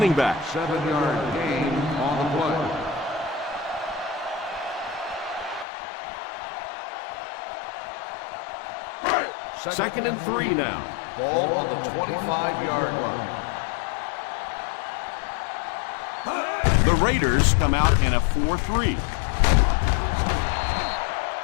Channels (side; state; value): right; drops out; at 5.7 s